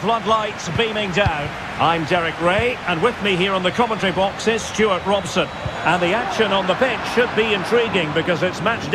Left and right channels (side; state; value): both; identical; correlation 1.00